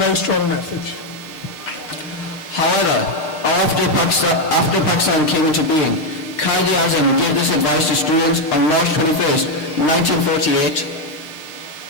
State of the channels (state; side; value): late; right; 6.6 ms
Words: strong message. However, after Pakistan came into being, Quaid-e-Azam gave this advice to students on March 21st, 1948,